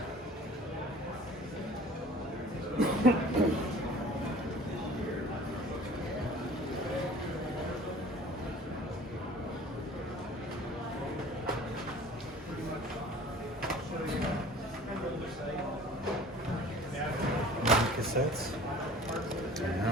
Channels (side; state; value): both; normal; correlation 0.46